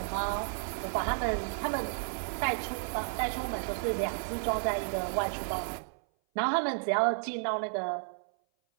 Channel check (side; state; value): left; silent; 56 dB below the other